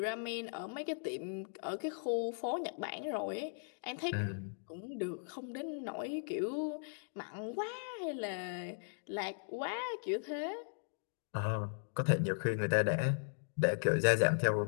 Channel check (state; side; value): silent; right; digital silence